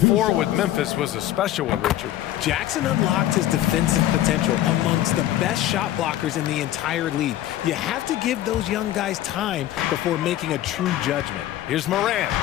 with Memphis was a special one, Richard. Jackson unlocked his defensive potential amongst the best shot blockers in the entire league. You have to give those young guys time before making a true judgment. Here's Morant.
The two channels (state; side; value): quieter; right; 13.4 dB